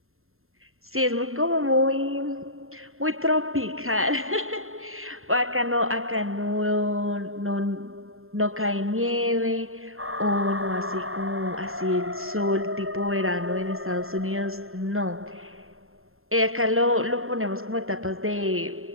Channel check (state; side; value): late; left; 0.62 ms